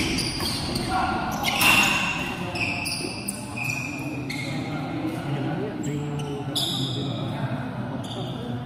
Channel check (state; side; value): identical; both; correlation 1.00